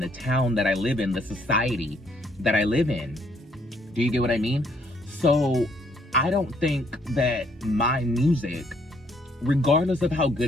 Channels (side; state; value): both; normal; correlation 0.68